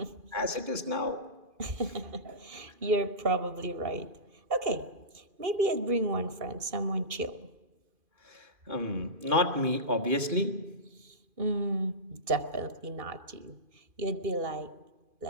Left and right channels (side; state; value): left; late; 2.4 ms